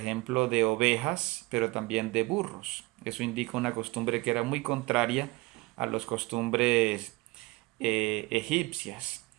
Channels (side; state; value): left; quieter; 22.4 dB